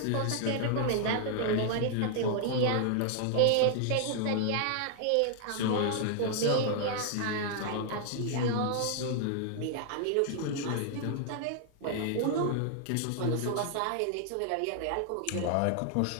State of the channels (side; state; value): both; different; correlation 0.00